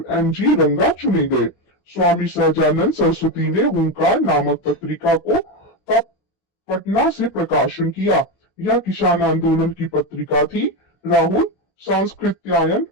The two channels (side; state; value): right; late; 16 ms